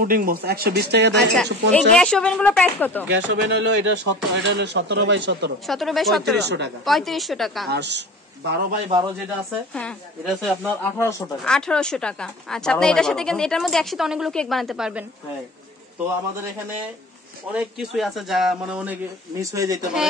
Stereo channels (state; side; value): normal; both; correlation 0.39